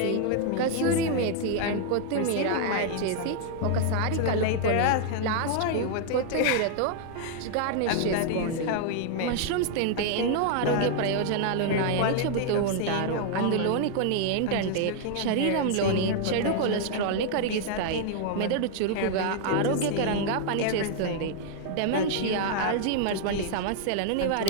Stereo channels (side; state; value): both; different; correlation 0.00